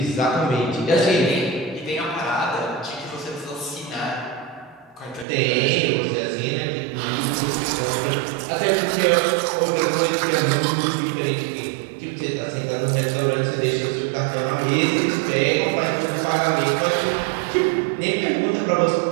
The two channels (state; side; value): drops out; left; at 5.2 s